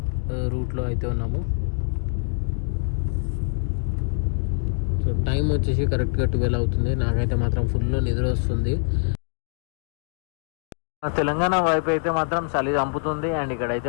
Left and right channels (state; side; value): silent; right; 62 dB below the other